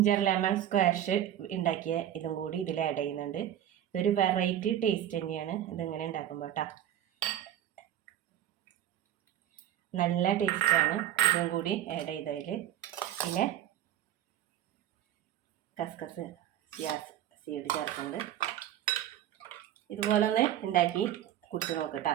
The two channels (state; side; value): quieter; left; 11.4 dB